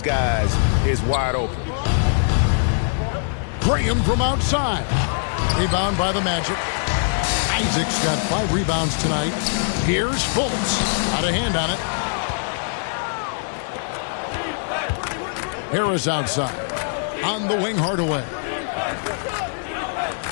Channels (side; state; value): right; silent; digital silence